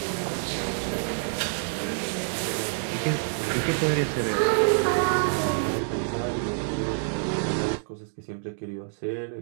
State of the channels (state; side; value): silent; left; digital silence